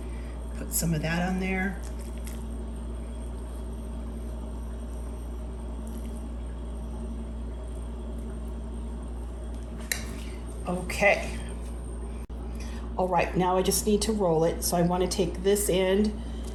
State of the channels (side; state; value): both; identical; correlation 1.00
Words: Put some of that on there. Okay. All right, now I just need to roll it. So I want to take this end